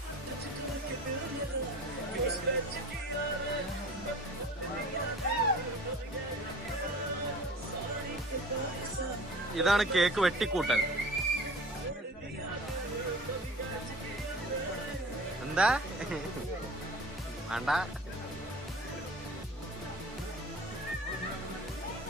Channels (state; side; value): normal; both; correlation 0.42